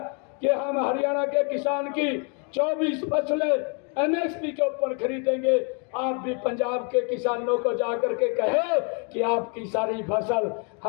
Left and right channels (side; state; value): right; quieter; 37.2 dB